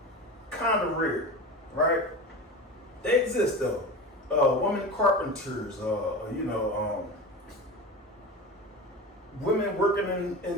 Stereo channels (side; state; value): both; normal; correlation 0.29